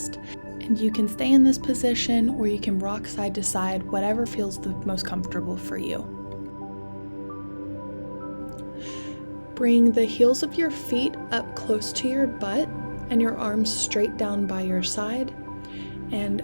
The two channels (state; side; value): inverted; both; correlation -1.00